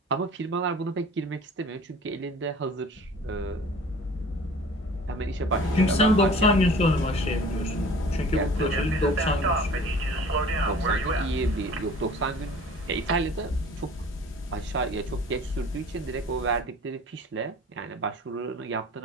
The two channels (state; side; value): normal; both; correlation 0.46